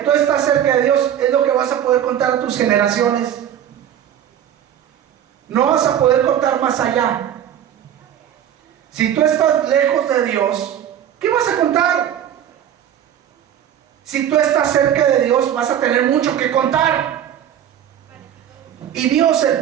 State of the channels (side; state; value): left; quieter; 10.2 dB